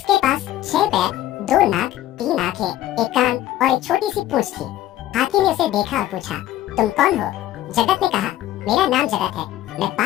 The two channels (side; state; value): right; quieter; 13.8 dB